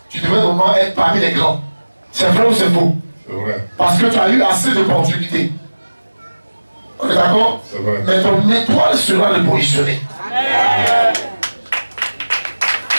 Tu devrais vraiment être parmi les grands. C'est vrai ou c'est faux? C'est vrai. Parce que tu as eu assez d'opportunités. On est d'accord? C'est vrai. Mais ton étoile sera repositionnée.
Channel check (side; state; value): both; inverted; correlation -1.00